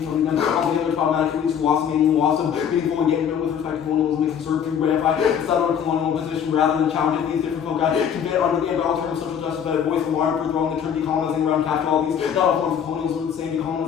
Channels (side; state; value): right; quieter; 8.2 dB